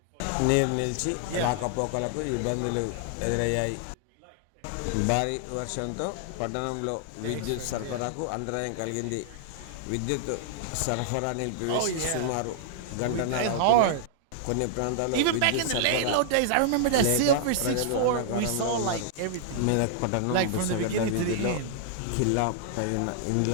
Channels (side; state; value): both; different; correlation -0.01